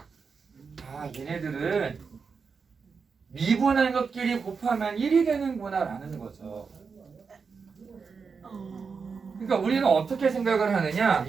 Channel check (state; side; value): quieter; left; 5.4 dB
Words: 얘네들은 미분한 것끼리 곱하면 1이 되는구나 라는 거죠. 그러니까 우리는 어떻게 생각을 하느냐,